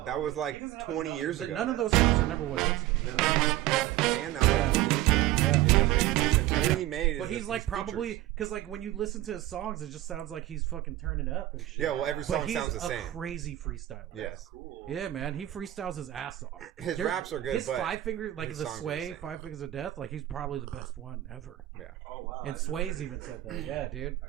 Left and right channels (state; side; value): quieter; left; 14.9 dB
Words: That was like 20 years ago. None of those songs are number one hits though. No. And that was like 20 years ago. Yeah. And he hasn't made anything since. Everything he made is but he's like his probably features. because like when you listen to his songs, it just sounds like he's fucking turning up and shit. Yeah, well, every song sounds the same. He's a crazy freestyler. Yes. Yeah, man, he freestyles his ass off. His raps are good. His but 5 finger, like his the songs are Sway, the same. 5 Fingers of Death, like he's probably the best one ever. Yeah. And Sway's even said that. Yeah, dude.